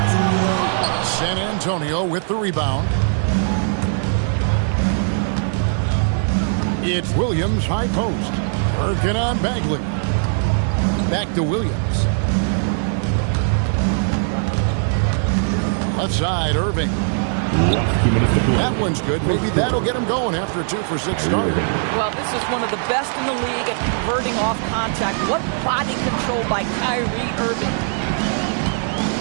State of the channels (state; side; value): silent; left; 63 dB below the other